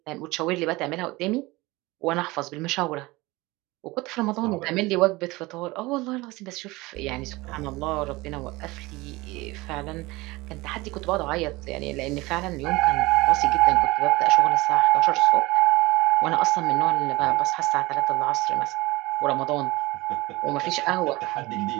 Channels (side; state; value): left; quieter; 21.6 dB